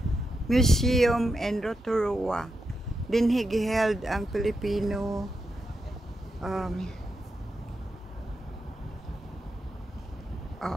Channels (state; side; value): normal; both; correlation 0.86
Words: Museum and Rotoroa. Dinhi giheld ang Filipino